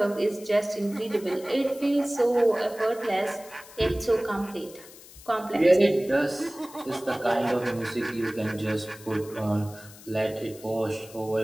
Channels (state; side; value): noise; left; hiss, 19 dB below the sound